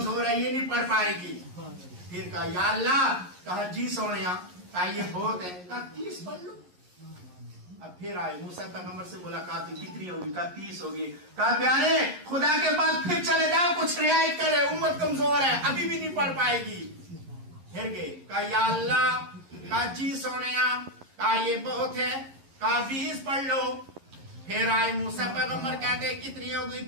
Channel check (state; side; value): late; left; 11 ms